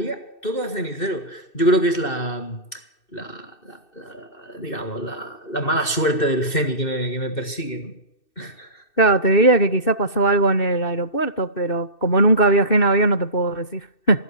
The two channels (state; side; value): late; right; 2.6 ms